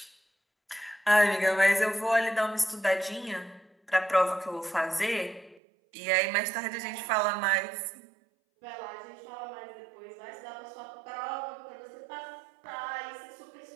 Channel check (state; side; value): drops out; left; at 5.6 s